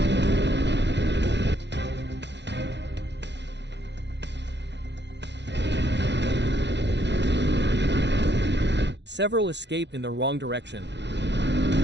Several escape in the wrong direction.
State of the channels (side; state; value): left; late; 0.51 ms